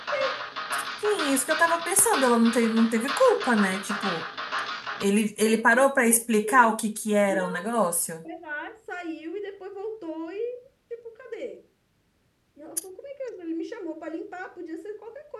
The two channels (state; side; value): identical; both; correlation 1.00